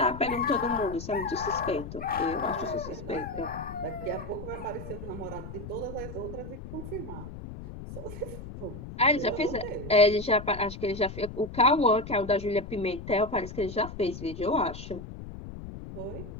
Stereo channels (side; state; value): left; noise; rumble, 11 dB below the sound